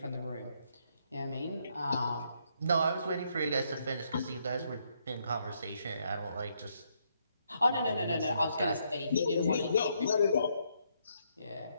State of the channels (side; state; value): both; inverted; correlation -0.74